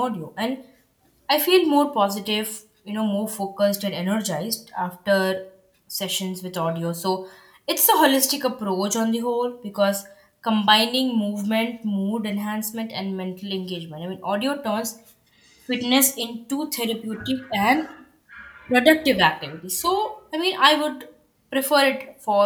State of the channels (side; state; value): both; identical; correlation 1.00